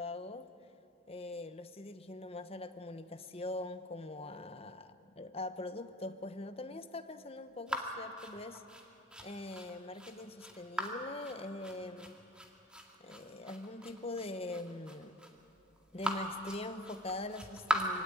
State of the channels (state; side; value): normal; both; correlation 0.46